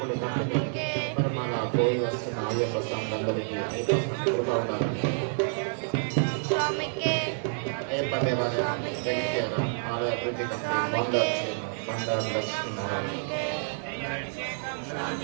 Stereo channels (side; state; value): left; silent; digital silence